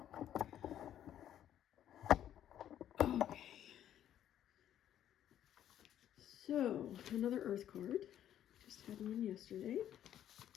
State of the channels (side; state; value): right; quieter; 10.9 dB